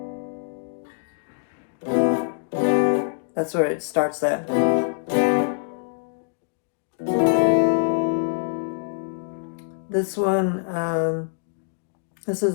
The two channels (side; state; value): right; silent; digital silence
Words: That's where it starts that. This one, this